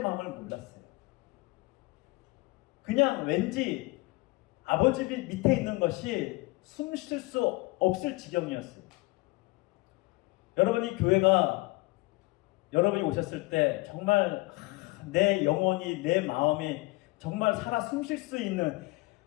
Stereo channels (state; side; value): quieter; right; 23.1 dB